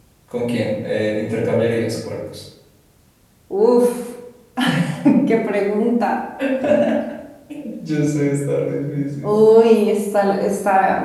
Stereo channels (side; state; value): both; identical; correlation 1.00